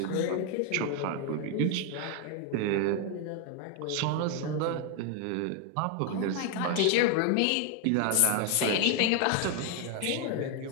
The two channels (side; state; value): both; different; correlation 0.01